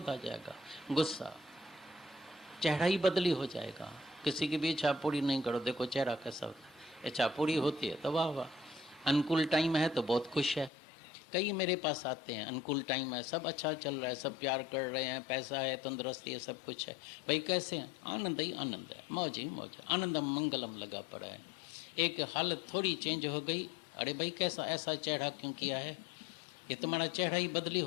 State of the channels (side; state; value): right; drops out; at 10.7 s